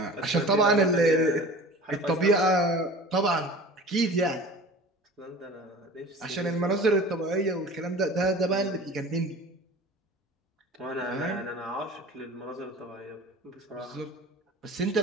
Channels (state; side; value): normal; both; correlation 0.40